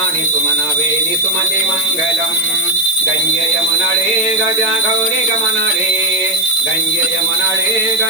सुमनवेनि सुमते मङ्गलम् गङ्गे यमुनळे गजा गौरी गमनळे गङ्गे यमुनळे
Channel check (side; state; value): right; noise; hiss, 14 dB below the sound